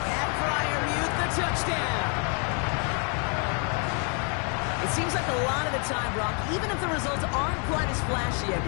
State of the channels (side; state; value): right; quieter; 38.4 dB